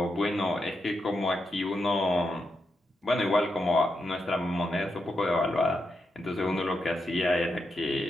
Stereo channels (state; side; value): normal; both; correlation 0.85